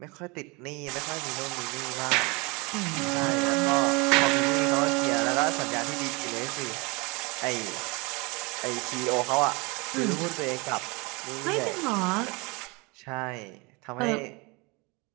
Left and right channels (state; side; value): quieter; left; 27.6 dB